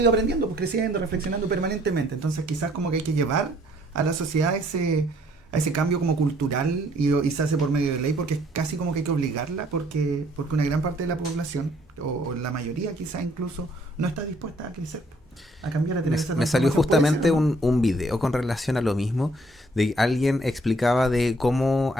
aprendiendo, pues creciendo, reflexionando permanentemente. Entonces quizás como que hay que llevar a la sociedad a ese cambio como cultural y se hace por medio de ley, porque es casi como que hay que obligarla, porque una gran parte de la población, o la mayoría quizás incluso, no está dispuesta a crecer, a cambiar, a tener esa Me salió transformación. Puede justamente ser, ¿o no? un video con relación a lo mismo, de alguien explicaba de cómo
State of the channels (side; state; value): both; normal; correlation 0.63